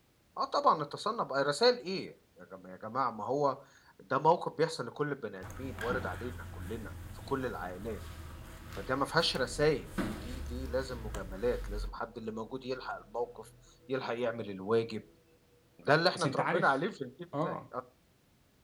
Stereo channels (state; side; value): identical; both; correlation 1.00